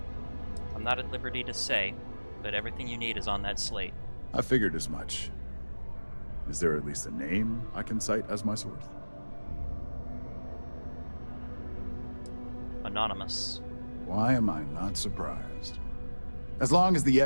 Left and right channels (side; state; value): both; inverted; correlation -1.00